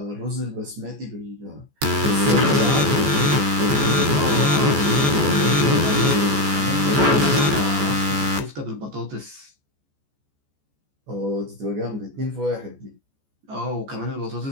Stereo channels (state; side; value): late; left; 14 ms